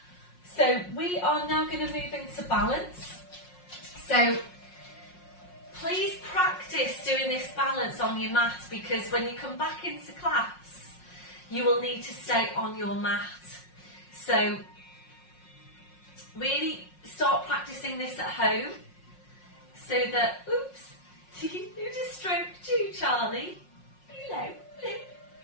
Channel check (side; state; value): right; late; 5.5 ms